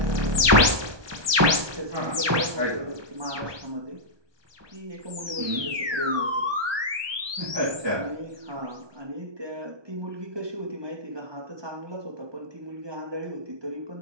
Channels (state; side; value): late; left; 1.2 ms